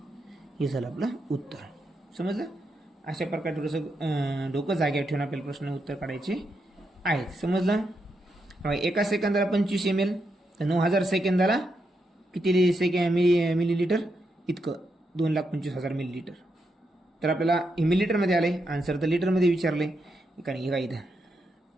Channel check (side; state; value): both; normal; correlation 0.82